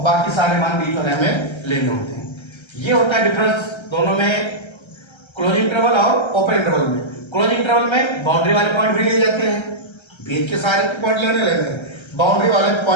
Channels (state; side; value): late; right; 1.3 ms